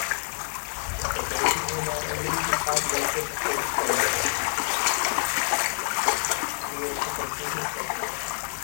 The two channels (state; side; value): silent; right; 60 dB below the other